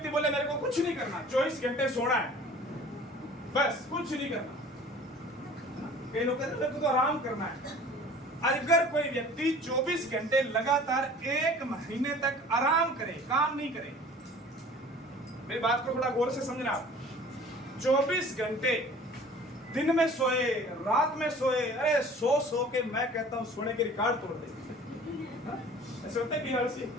बोले मेरे को कुछ नहीं करना, 24 घंटे सोना है, बस कुछ नहीं करना। कई लोग कहते हैं मेरे को तो आराम करना है। अगर कोई व्यक्ति 24 घंटे लगातार 1 महीने तक आराम करे, काम नहीं करे, मेरी बात को थोड़ा गौर से समझना। 24 घंटे दिन में सोए, रात में सोए, अरे सो के मैं कहता हूं सोने के रिकॉर्ड तोड़ दे। ऐसे होता है कि हर सी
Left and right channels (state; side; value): normal; both; correlation 0.47